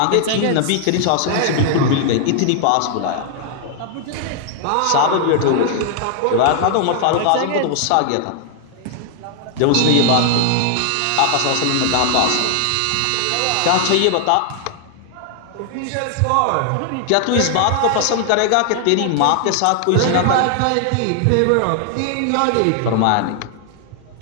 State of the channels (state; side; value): different; both; correlation 0.00